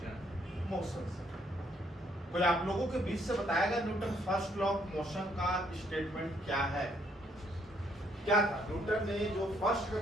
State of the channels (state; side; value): normal; both; correlation 0.69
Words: motion से। कोई आप लोगों के बीच से बताएगा Newton first law of motion का स्टेटमेंट क्या है? क्या था न्यूटन ने जो फर्स्ट